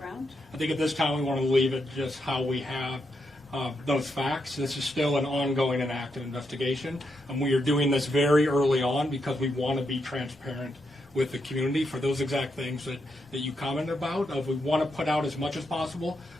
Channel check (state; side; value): normal; both; correlation 0.82